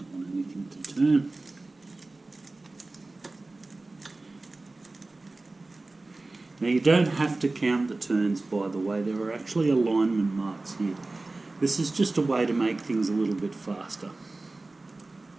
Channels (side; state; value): left; quieter; 3.2 dB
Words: want anything to turn. Now you don't have to count the turns, by the way. There are actually alignment marks here. This is just a way to make things a little bit faster.